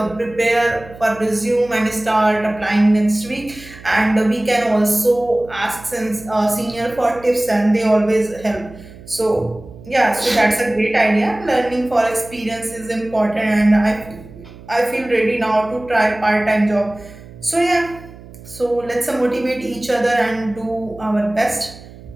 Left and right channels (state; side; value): noise; right; hum, 19 dB below the sound